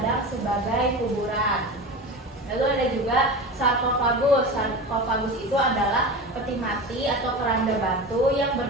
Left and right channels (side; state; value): both; normal; correlation 0.28